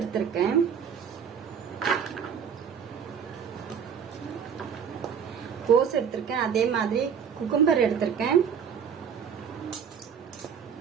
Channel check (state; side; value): quieter; left; 7.3 dB